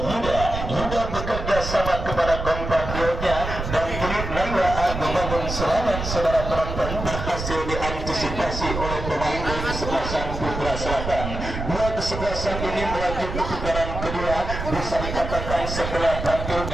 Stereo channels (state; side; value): noise; right; rumble, 5 dB below the sound